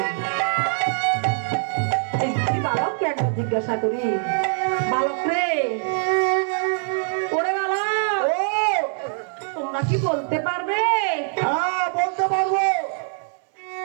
এই দুটি বালককে একবার জিজ্ঞাসা করি, বালক রে, ওরে বালক, তোমরা কি বলতে পারবে? হ্যাঁ, বলতে পারবো।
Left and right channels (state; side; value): silent; left; 58 dB below the other